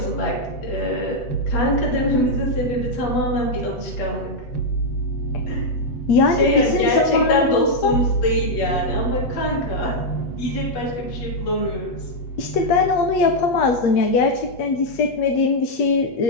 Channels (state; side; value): late; right; 8.0 ms